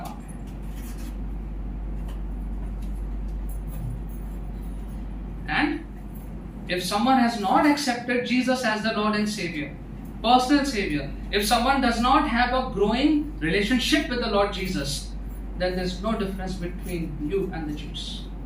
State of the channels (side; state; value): both; identical; correlation 1.00